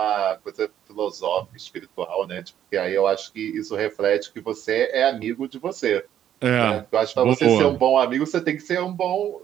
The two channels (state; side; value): quieter; left; 10.6 dB